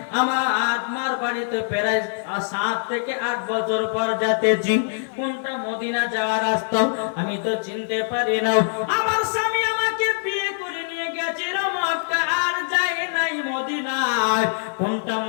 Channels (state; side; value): silent; right; 60 dB below the other